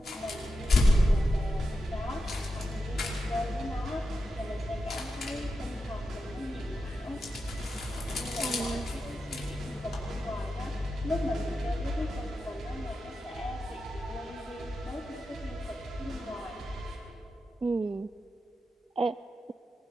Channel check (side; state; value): both; normal; correlation 0.89